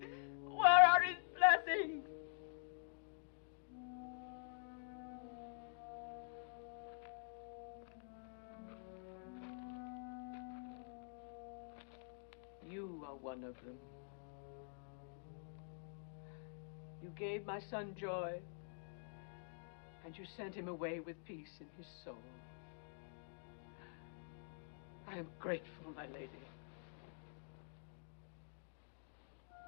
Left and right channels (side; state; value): right; silent; digital silence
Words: are his blessings? You are one of them. You gave my son joy, and you sent him away with peace in his soul. I am grateful, my lady.